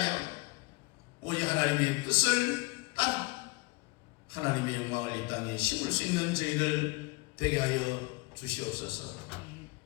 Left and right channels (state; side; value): quieter; right; 25.2 dB